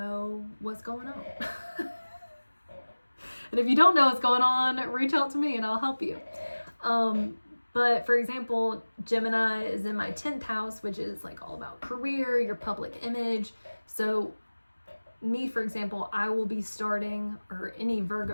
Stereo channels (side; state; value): both; inverted; correlation -1.00